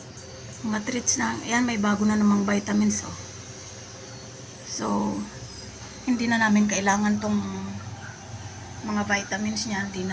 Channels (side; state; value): both; identical; correlation 1.00